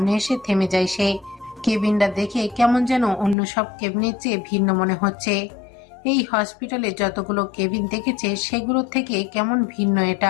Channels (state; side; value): drops out; right; at 3.4 s